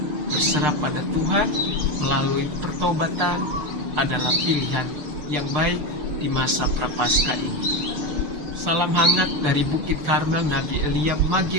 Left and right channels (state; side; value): late; left; 6.7 ms